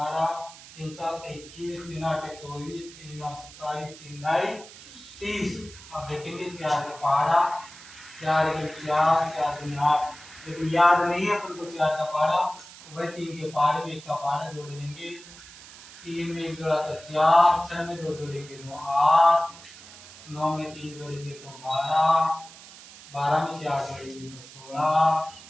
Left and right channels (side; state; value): right; noise; hiss, 18 dB below the sound